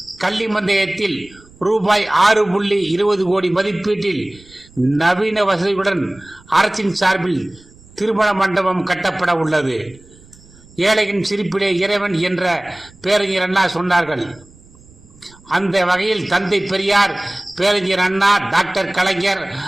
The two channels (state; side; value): noise; right; rumble, 25 dB below the sound